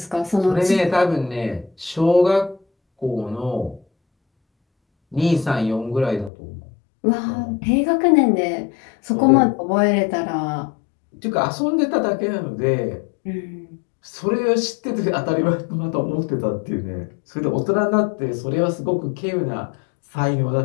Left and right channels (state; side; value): drops out; right; at 6.3 s